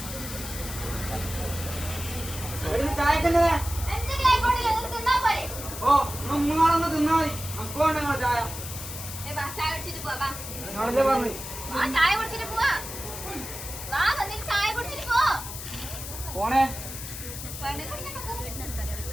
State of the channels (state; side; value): noise; left; hiss, 9 dB below the sound